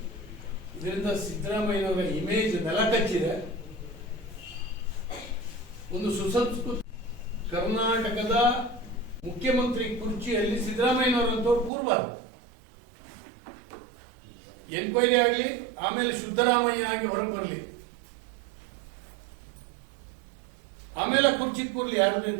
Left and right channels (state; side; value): drops out; left; at 11.7 s